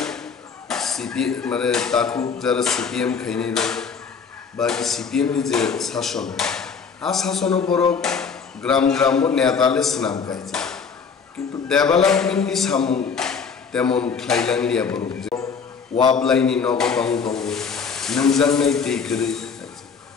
সিপিএম মানে তাকু যারা সিপিএম খাইনি বাকি সিপিএম নি যে শাসন আ শাসন বড় গ্রাম গ্রাম নেতালে স্নাম গাইছে কিন্তু ডেভেলপমেন্ট নি সামু তেমন খাইলাংলিয়া বড় ওয়াবলাইনি নগতং দং নংজাংনাই দেইকরে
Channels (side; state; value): right; quieter; 5.9 dB